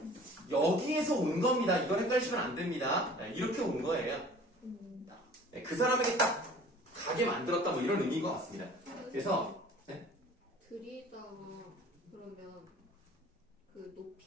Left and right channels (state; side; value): normal; both; correlation 0.47